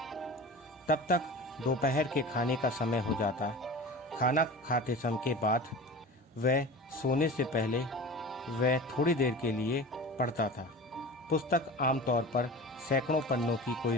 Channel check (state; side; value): normal; both; correlation 0.34